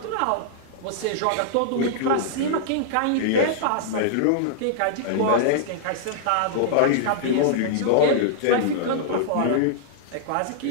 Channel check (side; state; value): both; different; correlation -0.01